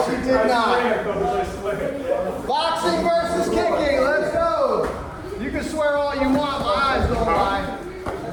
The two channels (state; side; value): identical; both; correlation 1.00